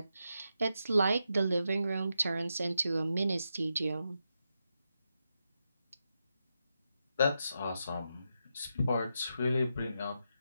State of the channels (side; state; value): both; inverted; correlation -0.86